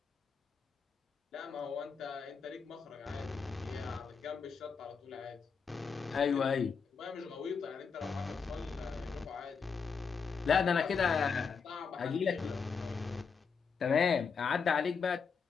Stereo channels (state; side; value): quieter; right; 5.7 dB